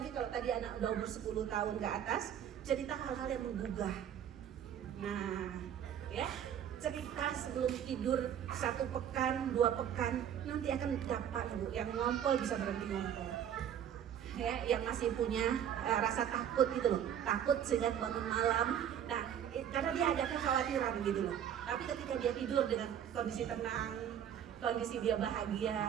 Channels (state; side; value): quieter; left; 9.5 dB